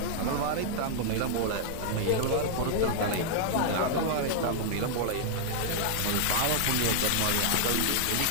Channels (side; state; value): both; different; correlation 0.00